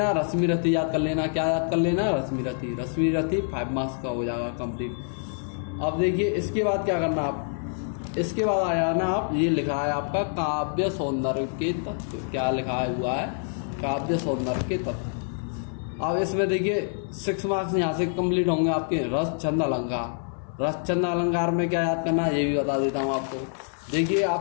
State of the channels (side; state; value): right; silent; 57 dB below the other